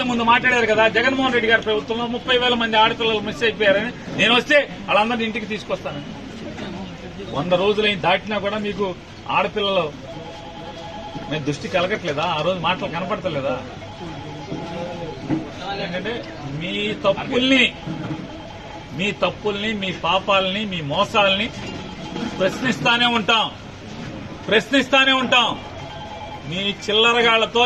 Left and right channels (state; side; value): identical; both; correlation 1.00